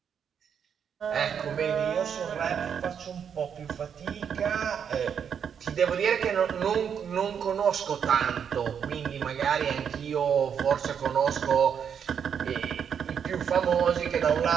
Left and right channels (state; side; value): quieter; left; 7.7 dB